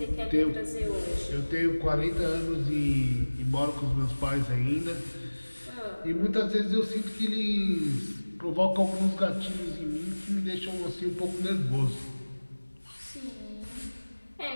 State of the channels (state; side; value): inverted; both; correlation -1.00